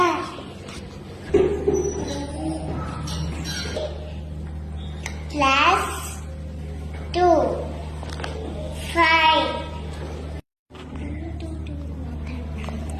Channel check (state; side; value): identical; both; correlation 1.00